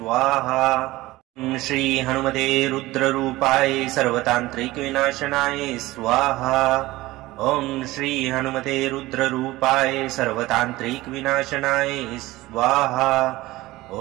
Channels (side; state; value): left; quieter; 18.6 dB